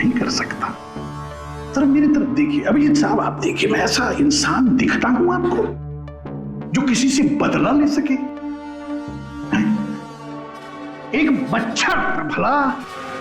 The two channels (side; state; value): both; identical; correlation 1.00